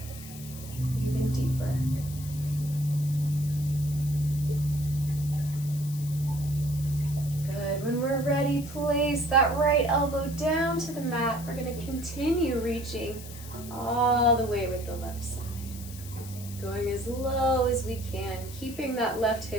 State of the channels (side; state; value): left; noise; hiss, 15 dB below the sound